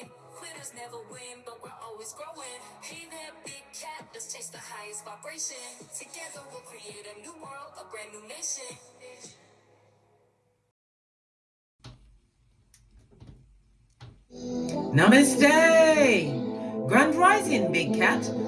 Quitters never win, but we're always growing. Hey there, big cat, let's chase the highest vibration. Together we'll create a new world, a brand new nation. Namaste! Grand Rising, Big Cat.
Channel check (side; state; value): both; identical; correlation 1.00